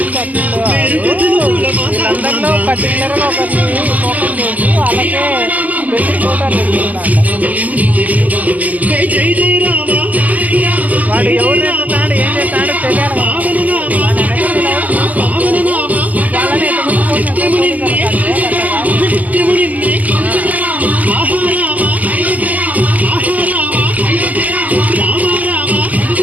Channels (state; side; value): late; left; 0.079 ms